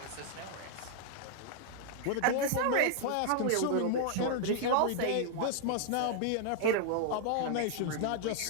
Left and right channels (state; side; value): different; both; correlation 0.00